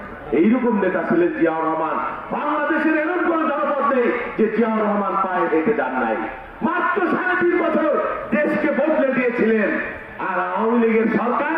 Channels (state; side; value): identical; both; correlation 1.00